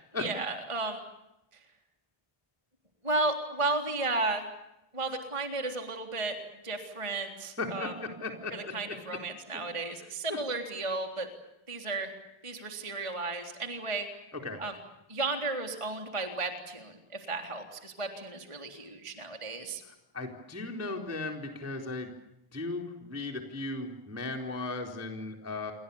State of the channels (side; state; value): left; late; 1.5 ms